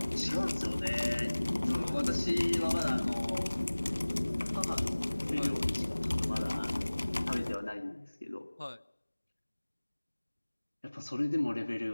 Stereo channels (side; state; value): both; inverted; correlation -1.00